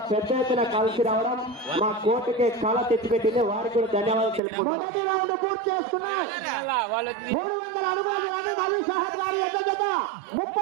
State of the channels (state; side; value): drops out; left; at 4.4 s